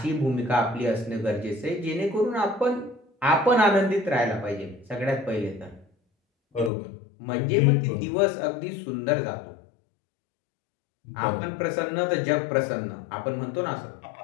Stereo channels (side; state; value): right; drops out; at 6.7 s